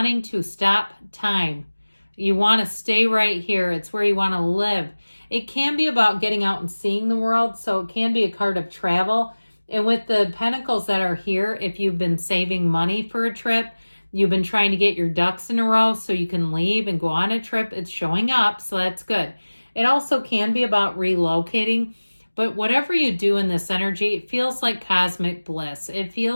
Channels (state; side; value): inverted; both; correlation -1.00